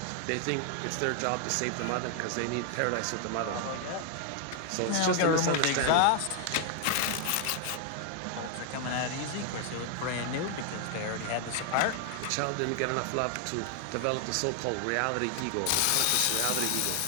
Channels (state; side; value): different; both; correlation 0.00